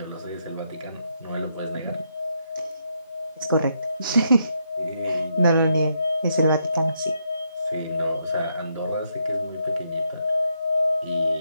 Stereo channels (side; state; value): both; inverted; correlation -0.77